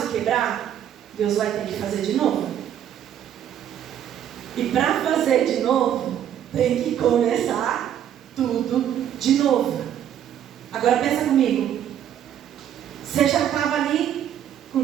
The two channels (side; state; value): left; quieter; 10.2 dB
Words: quebrar, Deus vai ter que fazer de novo. E para fazer de novo, tem que começar tudo de novo. Agora pensa comigo. Você já estava ali com